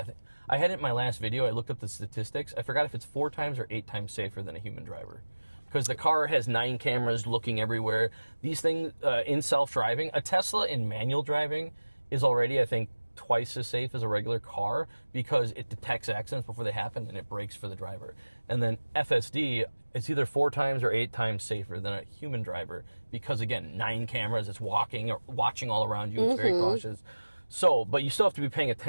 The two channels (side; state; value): both; inverted; correlation -1.00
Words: I had it in my last video. I looked up the statistics. I forgot if it's 4 times or 8 times safer than a human driver. Because the car has 9 cameras looking everywhere. These things in self-driving, a Tesla in manual driving is already, I think, twice as safe as a regular car because it detects accidents before they happen and it brakes for the driver. And then FSD, it's either 4 times or 8 times safer than a human driver because, again, 9 cameras, it's watching all around you, it's very cautious. So, but you still have to be paying